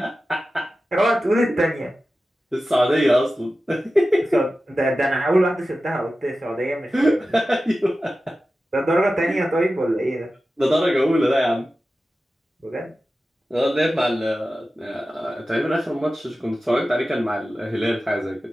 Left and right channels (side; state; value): both; normal; correlation 0.94